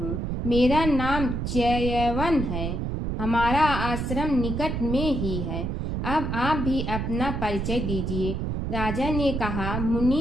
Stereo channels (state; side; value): noise; right; rumble, 2 dB below the sound